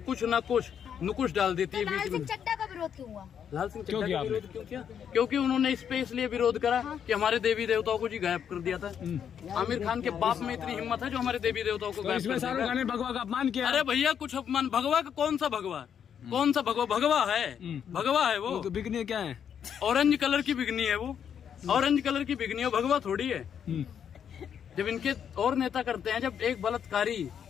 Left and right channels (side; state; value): right; quieter; 8.3 dB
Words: कुछ न कुछ नुकुश डाल देती है लाल बीच सिंह में। चड्ढा का विरोध क्यों हुआ? लाल सिंह क्यों चड्ढा किया का विरोध क्यों किया? क्योंकि उन्होंने इस पे इसलिए विरोध करा कि हमारे देवी देवताओं को जी गायब कर दिया था। आमिर खान के बाप में इतनी हिम्मत है जो हमारे देवी देवताओं को तो गायब इसमें कर शाहरुख दिया। खान ने भगवा का अपमान किया। अरे भैया कुछ अपमान, भगवा का कौन सा भगवा? कौन सा भगवा? भगवा है, भगवा है वो। तो बिकने क्या है? ऑरेंज कलर की बिगनी है वो, ऑरेंज कलर की बिगनी है, भगवा थोड़ी है। जब इनके और नेता करते हैं, जब एक बलात्कारी